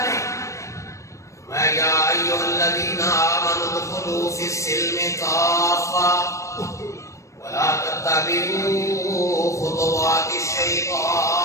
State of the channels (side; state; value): right; late; 0.15 ms